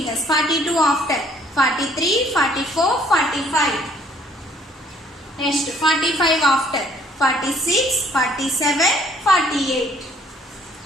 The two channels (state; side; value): normal; both; correlation 0.62